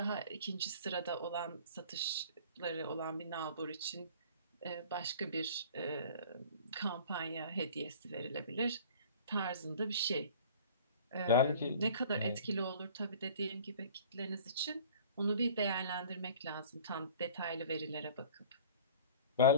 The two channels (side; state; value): both; inverted; correlation -0.46